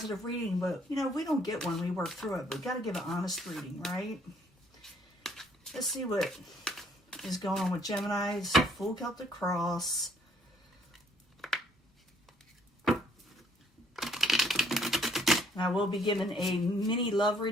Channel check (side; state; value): both; normal; correlation 0.64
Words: reading, but you know, we don't get one, we work through it. But we got to give an honest reading, right? Let's see what is going on with Gemini's full Celtic cross. And I will be giving a mini love